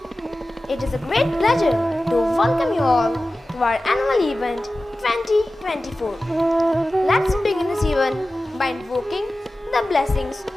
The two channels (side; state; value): both; normal; correlation 0.95